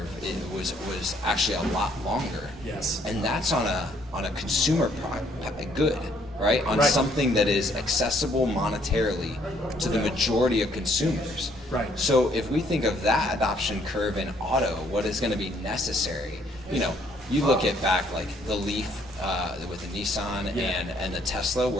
was actually a lot longer. Yes. And that's on a consumer good, right? On something that is accessible monetarily to the majority of consumers. Right. So if we think of that adoption curve in auto, what is going to be necessary? You look at back like the Leaf with the Nissan and the Tesla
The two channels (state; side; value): normal; both; correlation 0.66